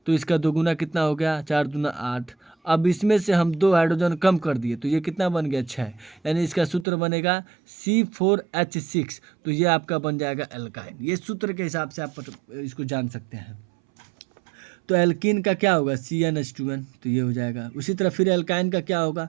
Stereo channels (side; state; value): left; drops out; at 6.9 s